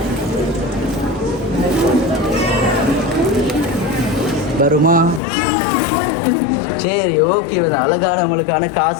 வருமா? சரி ஓகே, அழகான உங்களுக்கான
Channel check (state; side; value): drops out; right; at 5.2 s